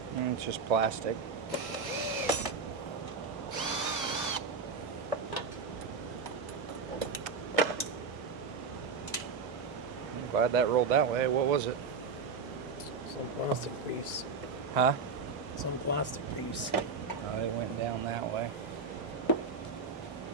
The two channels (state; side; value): quieter; left; 4.8 dB